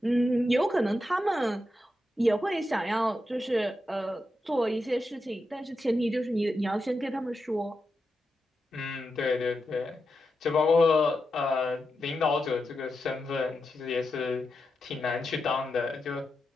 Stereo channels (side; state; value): both; normal; correlation 0.88